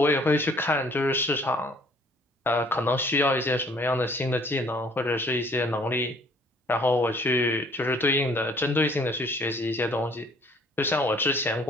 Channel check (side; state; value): both; normal; correlation 0.58